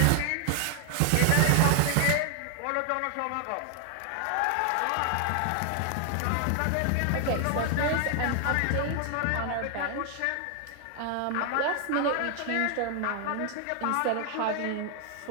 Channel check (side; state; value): both; different; correlation 0.00